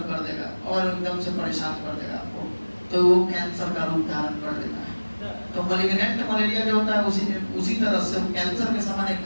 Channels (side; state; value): both; inverted; correlation -1.00